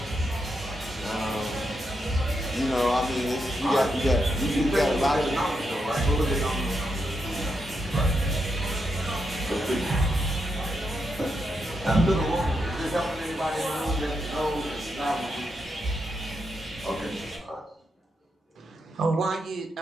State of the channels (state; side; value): normal; both; correlation 0.83